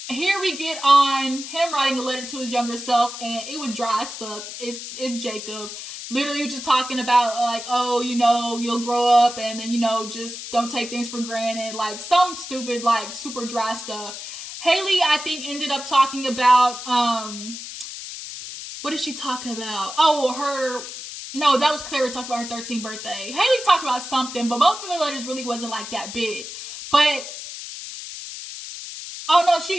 here we get on him writing a letter to his younger self, and it was dry as fuck. It's Jacob. Literally just talking about, like, oh, you'll grow up and then, just don't take things for granted. Like, some stupid, like, super dry stuff. Haley, I think, ended up talking about, what did she talk about? Oh, no, that was Clara talking about her 13th birthday. Haley talked about something, but both of the letters really wasn't, like, that big. But, oh, no,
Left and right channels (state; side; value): noise; left; hiss, 10 dB below the sound